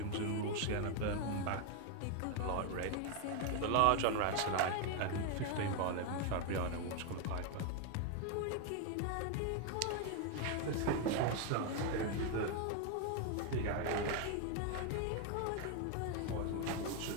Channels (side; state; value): both; different; correlation 0.01